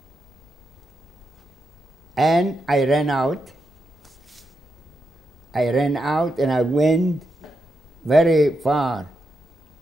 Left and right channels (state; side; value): normal; both; correlation 0.85